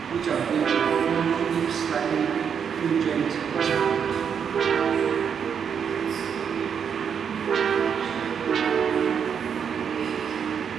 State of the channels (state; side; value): quieter; left; 7.3 dB